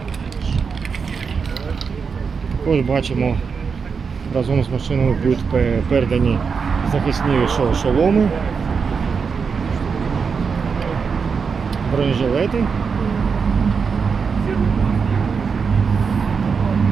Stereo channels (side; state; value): left; quieter; 5.7 dB